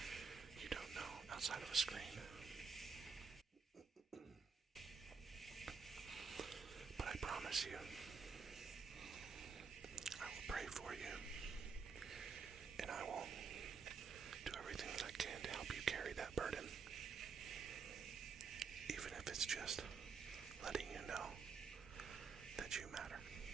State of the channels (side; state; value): left; quieter; 5.4 dB